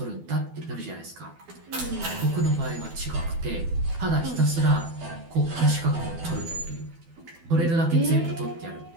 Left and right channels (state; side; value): late; left; 12 ms